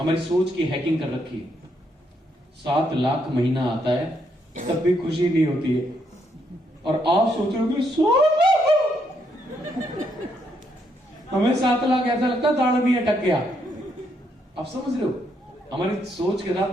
सोच की हैकिंग कर रखी है। 7 लाख महीना आता है तब भी खुशी नहीं होती है, और आप सोच रहे हो हमें 7 लाख ऐसा लगता है दाढ़ भी अटक गया। आप समझ रहे हो? हमारी सोच के साथ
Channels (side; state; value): both; normal; correlation 0.75